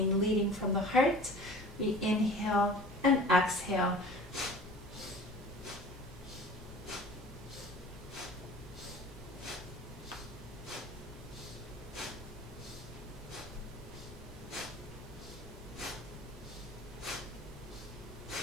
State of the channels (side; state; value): both; normal; correlation 0.43